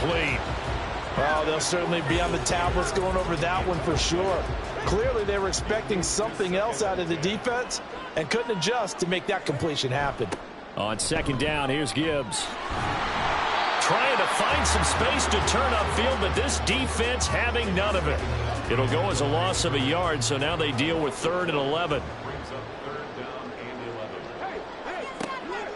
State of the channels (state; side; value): identical; both; correlation 1.00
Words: Well, they'll certainly be on the tablets going over that one for sure. Clearly, they were expecting something else out of the defense and couldn't adjust to make that completion happen. On second down, here's Gibbs. Trying to find some space to turn upfield, but this defense having none of it. It'll go as a loss of a yard, so now they deal with 3rd and 11.